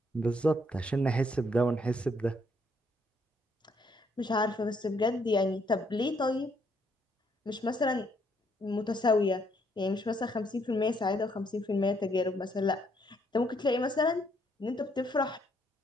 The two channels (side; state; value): both; normal; correlation 0.70